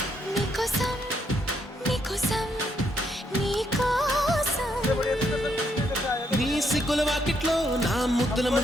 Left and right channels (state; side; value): normal; both; correlation 0.75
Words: నీకోసం నీకోసం నీకోసం నీ సిగ్గుల వాకిట్లో నా ముద్దుల